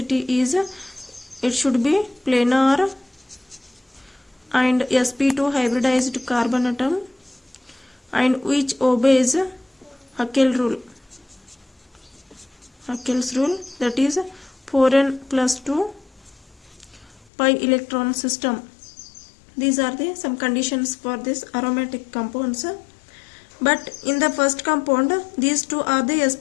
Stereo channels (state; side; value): drops out; right; at 17.2 s